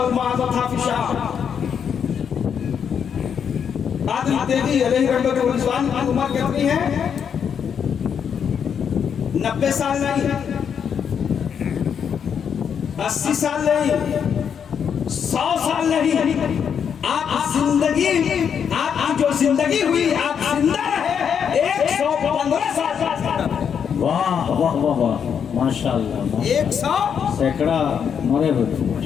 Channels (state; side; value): quieter; right; 7.5 dB